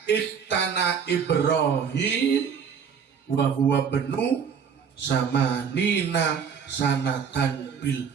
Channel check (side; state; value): left; quieter; 6.9 dB